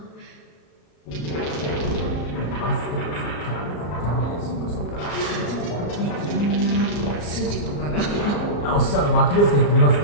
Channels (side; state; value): right; late; 34 ms